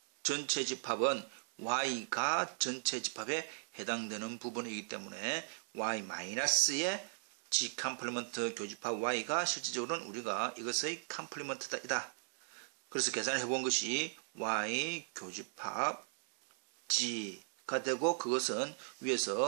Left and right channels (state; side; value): silent; left; digital silence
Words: 전체 집합은 y가 전체 집합에 해당되는 부분이기 때문에 y-의 G 컴플리먼트 교집합 y가 실질적으로는 우리가 이것의 컴플리먼트이다. 그래서 계산을 해본 것이 y 교집합 G가 되고, 그것은